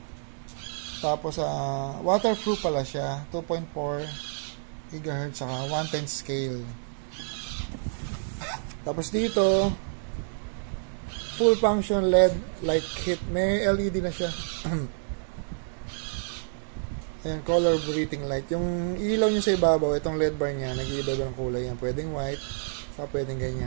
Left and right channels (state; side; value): silent; left; digital silence